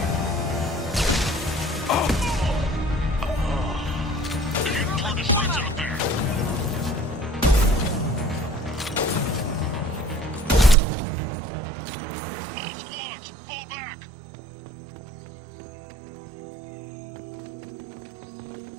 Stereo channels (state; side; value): drops out; left; at 10.8 s